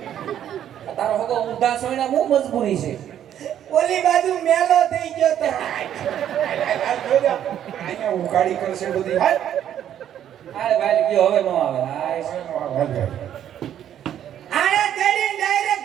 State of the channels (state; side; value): quieter; left; 10.4 dB